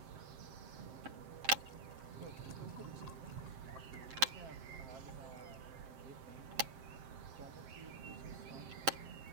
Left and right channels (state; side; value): late; left; 7.6 ms